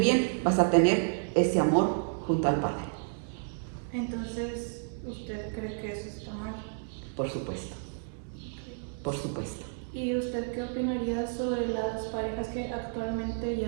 vas a tener ese amor junto al Padre. Entonces, ¿usted cree que eso está mal? Por supuesto. Por supuesto. ¿Y usted qué opinaría sobre las parejas que actualmente,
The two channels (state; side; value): silent; left; digital silence